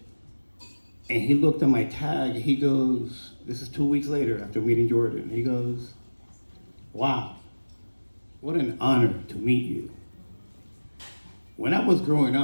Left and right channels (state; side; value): inverted; both; correlation -1.00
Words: And he looked at my tag, he goes, this is 2 weeks later after meeting Jordan. He goes, wow, what an honor to meet you. When I was growing